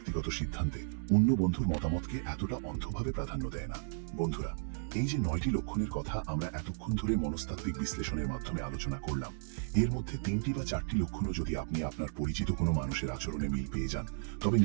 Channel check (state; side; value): silent; left; digital silence